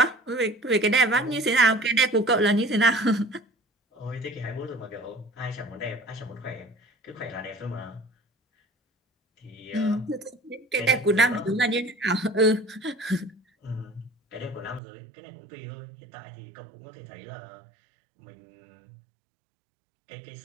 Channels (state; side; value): drops out; left; at 14.8 s